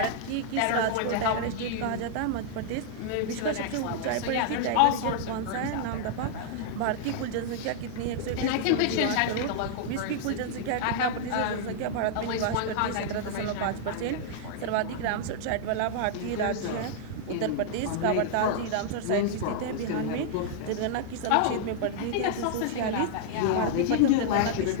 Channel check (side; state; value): both; different; correlation -0.01